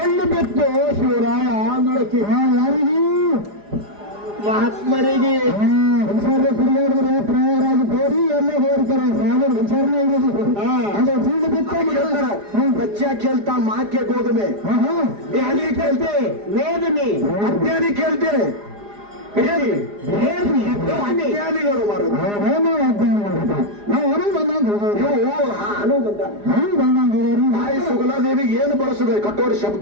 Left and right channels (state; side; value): late; left; 4.9 ms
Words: ಬಿತ್ತು ಶಿವರಾಯ ಅಂದಳಕಿ ಯಾರಿಗೆ ಮಹಾತ್ಮರಿಗೆ ಹುಷಾರ ಕುಡಿಯೋದ್ರೆ ಪ್ರಯಾರಾಗಿ ಹೋರಿ ಎಲ್ಲ ಹೋಗ್ತಾರೆ ಸಾಗರ ಹುಷಾರನೇ ಇರೋದು ಅದು ಚೆಂಡು ಬಿತ್ತು ಹೇಳ್ತಾರ ಬಚ್ಚ ಕೇಳ್ತಾ ಮಾಕೆ ಗೋಧುಮೆ ಧ್ಯಾನಿ ಕೇಳ್ತೆ ವೇದನೆ ಅಜ್ಞಾನಿ ಕೇಳ್ತೆ ಅಜ್ಞಾನಿಗಳು ಮಾರು ನಾವು ಹೊರಗೆ ಬಂದಂಗ ತಾಯಿ ಸುಗಲಾದೇವಿಗೆ ಏನು ಬಳಸಿದೆ ಕಟ್ಟೋರಿ